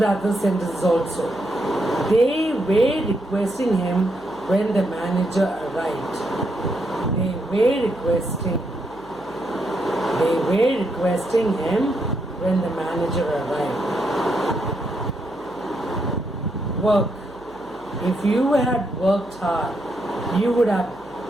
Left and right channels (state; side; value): noise; right; hum, 26 dB below the sound